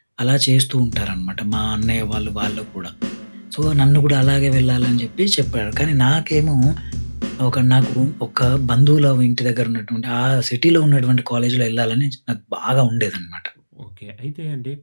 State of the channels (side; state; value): both; inverted; correlation -1.00